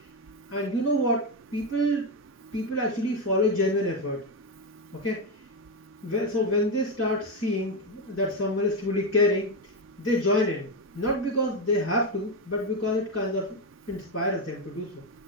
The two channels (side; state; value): both; normal; correlation 0.09